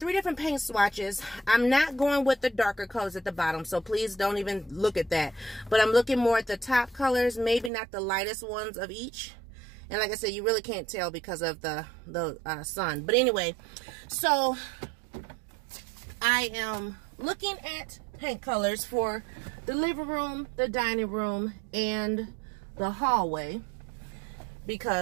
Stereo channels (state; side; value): drops out; left; at 7.7 s